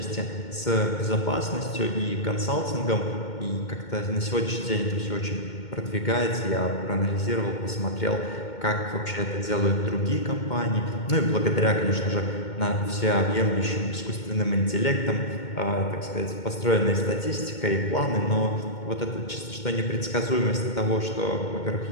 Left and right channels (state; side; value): late; right; 2.2 ms